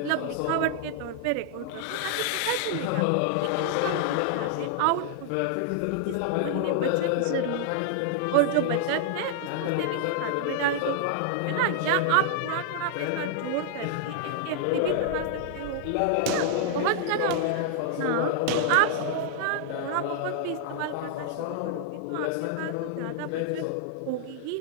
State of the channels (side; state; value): both; different; correlation -0.01